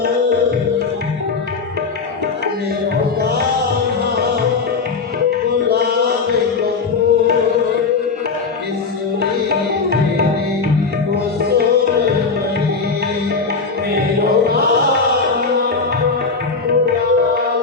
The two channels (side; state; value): right; quieter; 4.7 dB